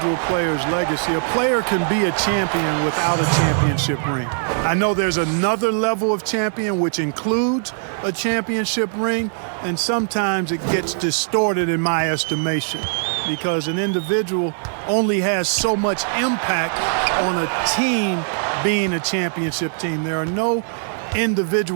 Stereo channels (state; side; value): silent; left; digital silence